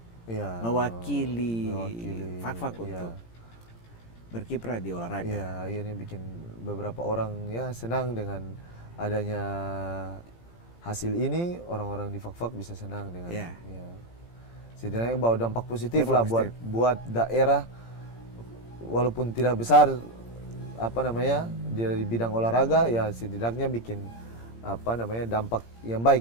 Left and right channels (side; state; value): right; late; 17 ms